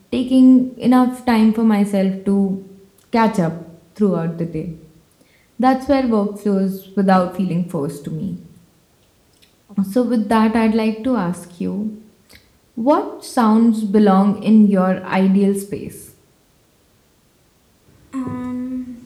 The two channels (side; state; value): both; identical; correlation 1.00